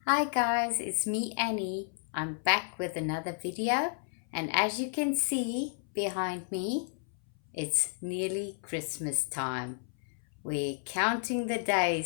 Hi guys, it's me Annie. I'm back with another video, and as you can see behind me, it's nearly Christmas time. We're counting the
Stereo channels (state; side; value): silent; right; 57 dB below the other